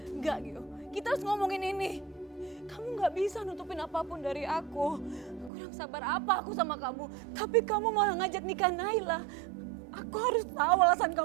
Gio. Kita harus ngomongin ini. Kamu gak bisa nutupin apapun dari aku. Kurang sabar apa aku sama kamu. Tapi kamu malah ngajak nikah Naila. Aku harus tahu alasan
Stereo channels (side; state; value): left; drops out; at 5.5 s